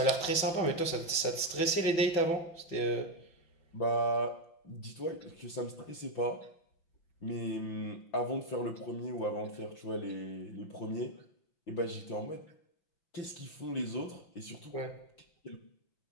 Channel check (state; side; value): late; right; 5.9 ms